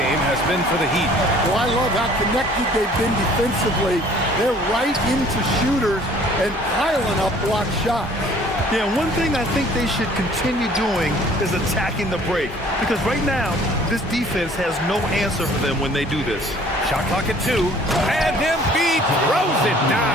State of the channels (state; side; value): normal; both; correlation 0.54